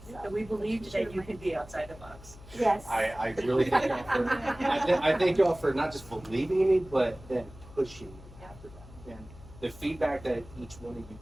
So we believed that you could be outside the box. Yes. I really thank y'all for, I thank y'all for not just believing in me, but then pushing me after that. And the feedback that each one of you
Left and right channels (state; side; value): noise; left; hum, 18 dB below the sound